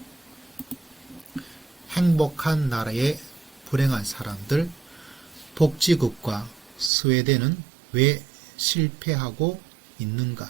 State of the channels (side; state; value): left; drops out; at 6.9 s